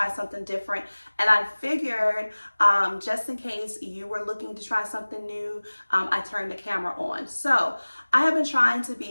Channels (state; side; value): inverted; both; correlation -1.00